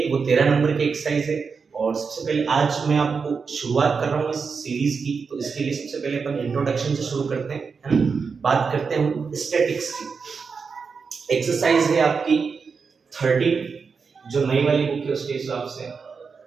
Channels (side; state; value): left; quieter; 5.4 dB